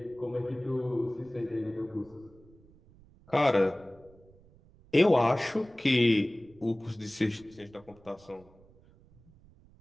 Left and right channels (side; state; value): right; noise; rumble, 26 dB below the sound